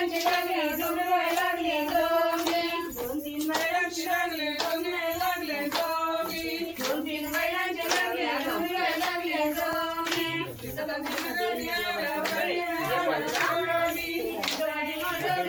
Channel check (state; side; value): identical; both; correlation 1.00